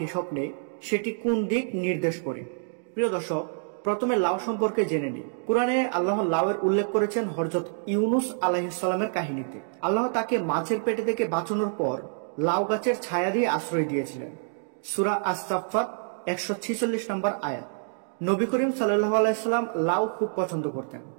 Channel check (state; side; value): silent; left; digital silence